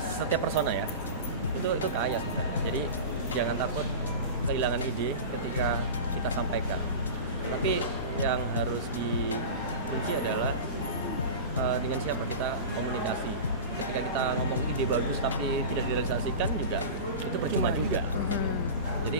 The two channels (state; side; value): inverted; both; correlation -0.30